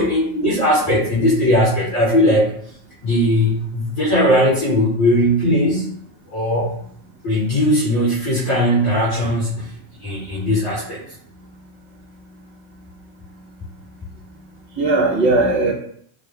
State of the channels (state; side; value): late; right; 5.4 ms